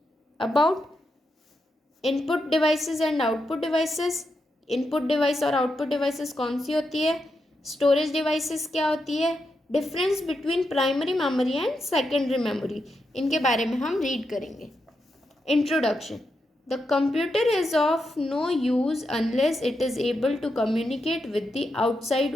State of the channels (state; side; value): normal; both; correlation 0.85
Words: About input devices and output devices. Input device और आउटपुट डिवाइसेस कौन सी होती है? स्टोरेज डिवाइसेस क्या होती है? Difference between primary memory and secondary memory, इनके बारे में हम रीड करेंगे. Introduction. The computer is of no use unless it is able to communicate with the